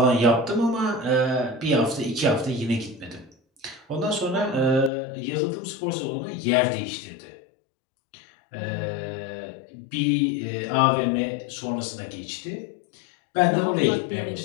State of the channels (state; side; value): drops out; right; at 4.9 s